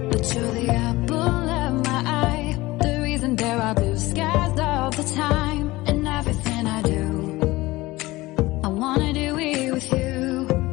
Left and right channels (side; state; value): right; quieter; 19.6 dB